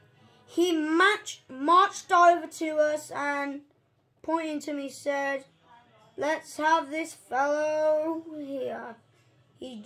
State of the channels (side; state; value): both; identical; correlation 1.00